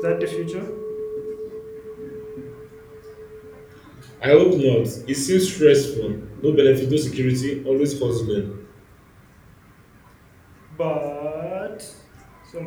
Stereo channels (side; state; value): both; identical; correlation 1.00